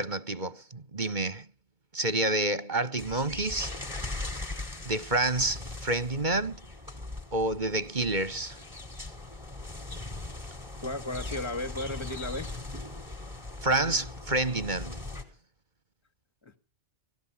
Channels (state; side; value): late; left; 2.2 ms